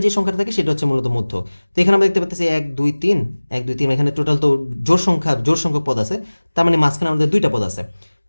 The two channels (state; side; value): inverted; both; correlation -1.00